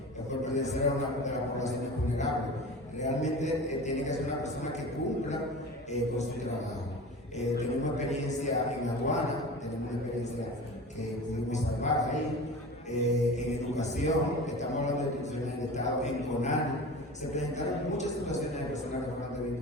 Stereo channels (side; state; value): both; normal; correlation 0.34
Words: por pertenecer a una de las poblaciones vulnerables. Realmente tiene que ser una persona que cumpla con su trabajo. Tenemos experiencia en aduana, tenemos una experiencia que pudimos salvar ahí. En educación, estamos hablando de instituciones del Estado, en CONANI, se presentaron muchas situaciones de personas que fueron